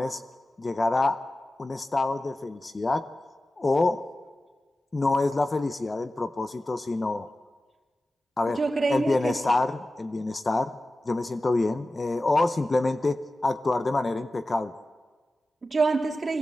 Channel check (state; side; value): normal; both; correlation 0.95